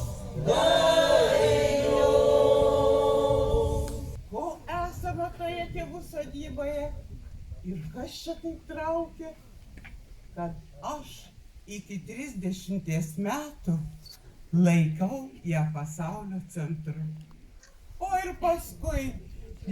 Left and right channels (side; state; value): both; identical; correlation 1.00